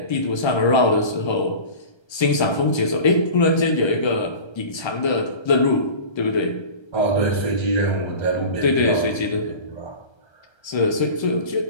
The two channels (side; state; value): right; late; 1.3 ms